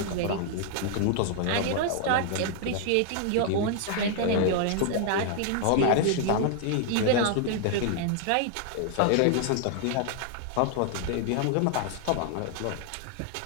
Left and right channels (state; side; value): different; both; correlation 0.00